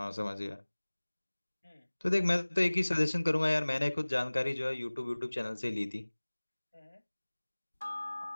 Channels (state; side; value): inverted; both; correlation -1.00